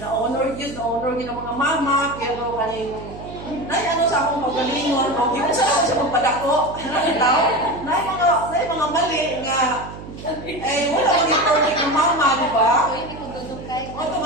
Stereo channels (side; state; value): right; noise; hum, 13 dB below the sound